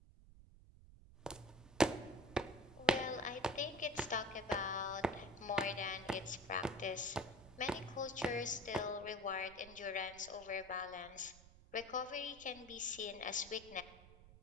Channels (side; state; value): right; noise; rumble, 20 dB below the sound